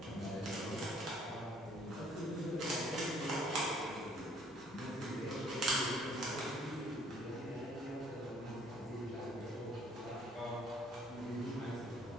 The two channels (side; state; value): both; normal; correlation 0.60